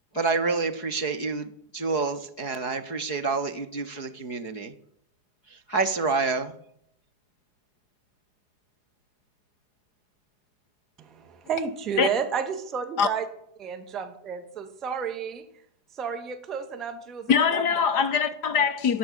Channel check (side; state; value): right; late; 4.7 ms